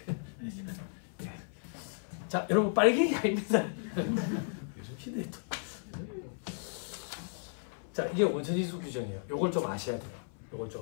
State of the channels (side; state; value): right; silent; 55 dB below the other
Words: 자 여러분 빨갱이 아닙니다. 요즘 시대에 또 자 이게 원천징수 규정이에요. 요걸 좀 아셔야 돼요. 요걸